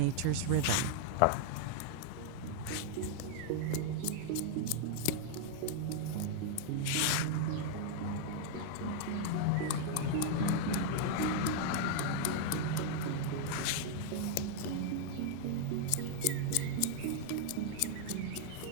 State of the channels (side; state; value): both; different; correlation -0.01